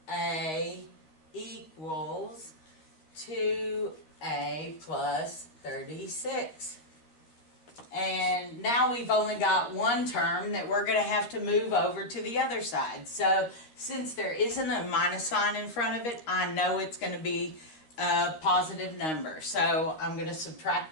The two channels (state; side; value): late; right; 13 ms